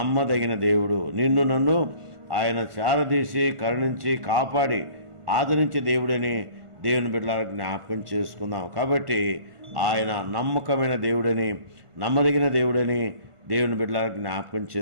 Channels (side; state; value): left; late; 1.5 ms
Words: దేవుడు. నిన్ను నన్ను ఆయన చారదీసి కరుణించి కాపాడి ఆదరించే దేవుడని దేవుని బిడ్డలారా జ్ఞాపకం చేసుకుందాం. కాబట్టి ఆయన నమ్మకమైన దేవుడని, నమ్మదగిన దేవుడని దేవుని బిడ్డలారా జ్ఞాపకం